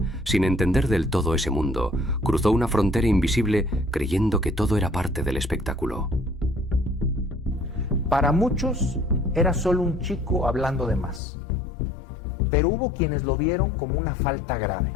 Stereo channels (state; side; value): drops out; right; at 11.2 s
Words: sin entender del todo ese mundo, cruzó una frontera invisible creyendo que todo era parte del espectáculo. Para muchos era solo un chico hablando de más, pero hubo quienes lo vieron como una falta grave.